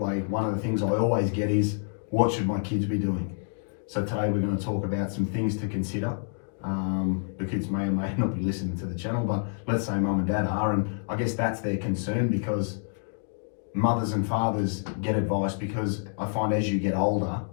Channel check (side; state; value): right; silent; digital silence